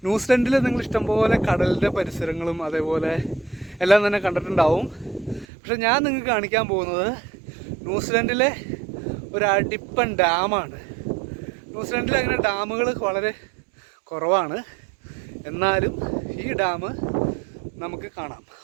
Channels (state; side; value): drops out; left; at 5.5 s